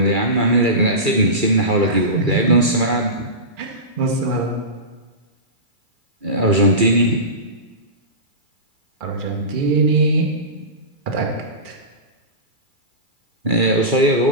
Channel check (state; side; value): late; left; 2.3 ms